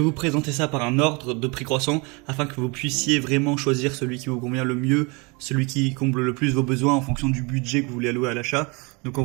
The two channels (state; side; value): quieter; left; 29.1 dB